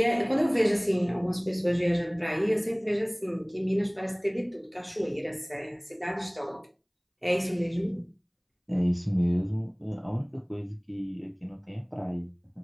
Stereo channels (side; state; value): both; identical; correlation 1.00